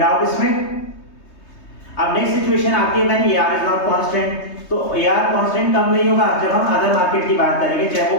इसमें? अब नेक्स्ट सिचुएशन आती है when AR is not constant. तो AR कांस्टेंट कब नहीं होगा? जब हम अदर मार्केट की बात करेंगे, चाहे वो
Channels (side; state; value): right; late; 3.2 ms